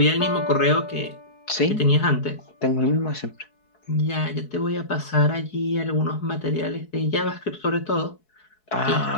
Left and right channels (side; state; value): right; late; 4.7 ms